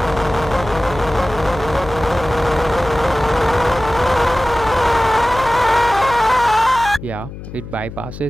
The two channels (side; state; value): left; noise; hum, 12 dB below the sound